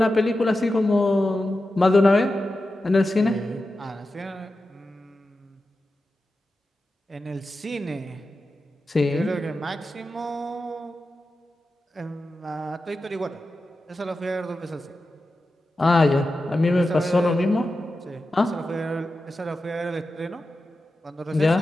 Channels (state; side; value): normal; both; correlation 0.92